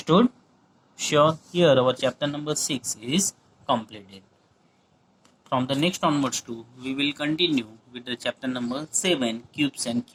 Sure. Here our chapter number 6 is completed. from the next onwards too, we will continue with the chapter number 7, cubes and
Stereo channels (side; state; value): both; identical; correlation 1.00